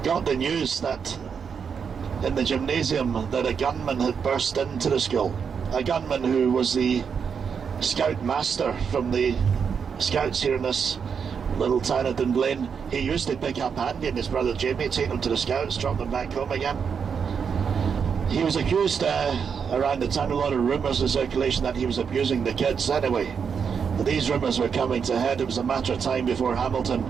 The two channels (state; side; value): quieter; left; 6.6 dB